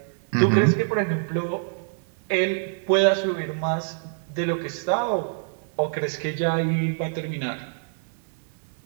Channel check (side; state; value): left; silent; digital silence